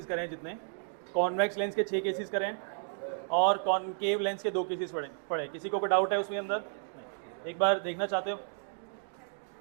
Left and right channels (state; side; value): silent; left; digital silence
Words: करे हैं, जितने कॉन्वेक्स लेंस के 6 केसेस करे हैं और कॉनकेव लेंस के 2 केसेस पढ़े। किसी को कोई डाउट है उसके अंदर? नहीं। एक बार देखना चाहते हो?